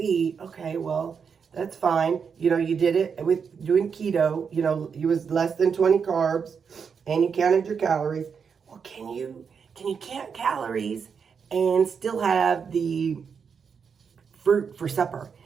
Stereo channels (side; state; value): left; quieter; 6.3 dB